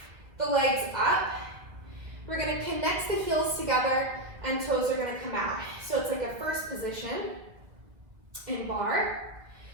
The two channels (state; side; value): late; left; 1.7 ms